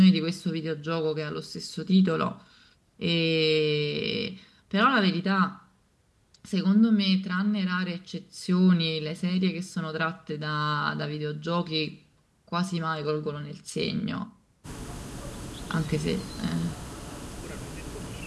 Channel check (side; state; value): both; identical; correlation 1.00